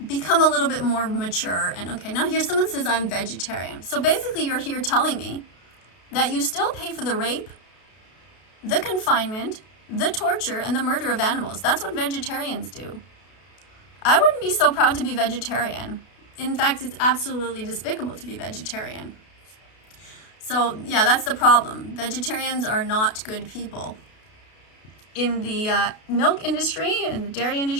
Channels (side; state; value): right; late; 32 ms